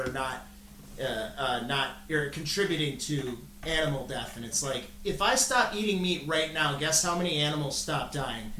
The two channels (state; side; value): identical; both; correlation 1.00